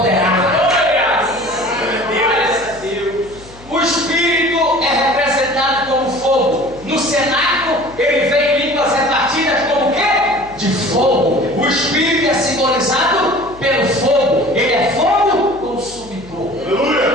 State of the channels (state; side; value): noise; left; hum, 21 dB below the sound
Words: O Espírito é representado como fogo. No cenáculo, ele vem em línguas repartidas como o quê? De fogo. O Espírito é simbolizado pelo fogo. Ele é fogo consumidor.